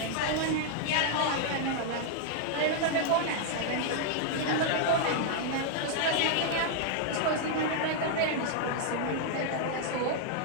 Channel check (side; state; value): both; different; correlation -0.01